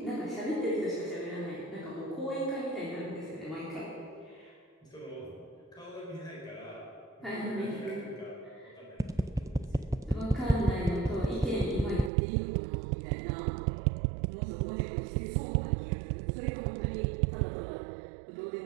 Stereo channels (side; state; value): left; drops out; at 12.1 s